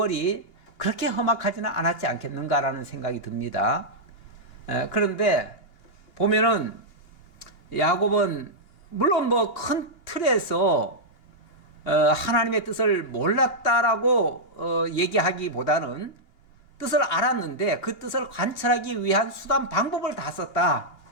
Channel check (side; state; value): right; late; 2.8 ms